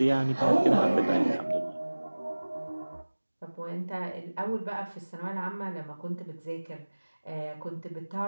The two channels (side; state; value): both; inverted; correlation -1.00